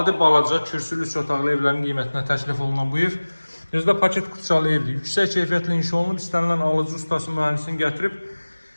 balaca, kürsülü 3 otaqlı evlərin qiymətinə təklif olunan bu ev özdə paket kutuçalı evdir. Yüksək keyfiyyətlə inşa olunub, istənilən alıcı ustası mühəndisini gətirib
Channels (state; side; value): inverted; both; correlation -1.00